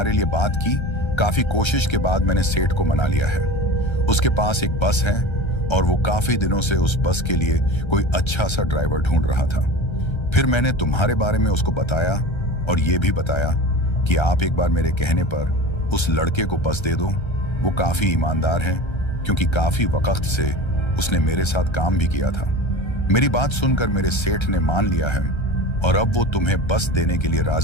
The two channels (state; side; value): late; right; 1.3 ms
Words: लिए बात की, काफी कोशिश के बाद मैंने सेठ को मना लिया है। उसके पास एक बस है और वो काफी दिनों से उस बस के लिए कोई अच्छा सा ड्राइवर ढूंढ रहा था। फिर मैंने तुम्हारे बारे में उसको बताया और ये भी बताया कि आप एक बार मेरे कहने पर उस लड़के को बस दे दो, वो काफी ईमानदार है, क्योंकि काफी वक्त से उसने मेरे साथ काम भी किया था। मेरी बात सुनकर मेरे सेठ ने मान लिया है और अब वो तुम्हें बस देने के लिए